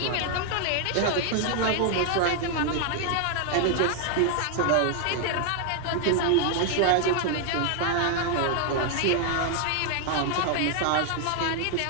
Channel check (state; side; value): different; both; correlation 0.00